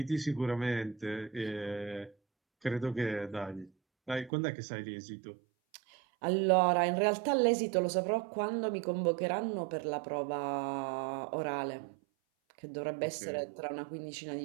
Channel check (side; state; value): left; drops out; at 4.3 s